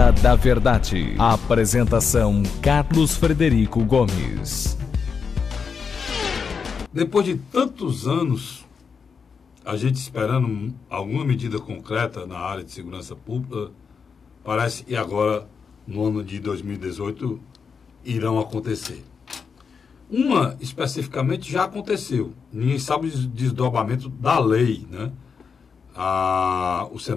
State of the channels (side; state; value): right; quieter; 5.8 dB